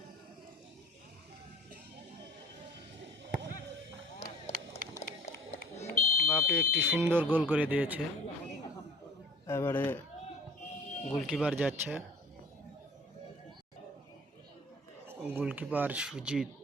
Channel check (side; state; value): both; normal; correlation 0.47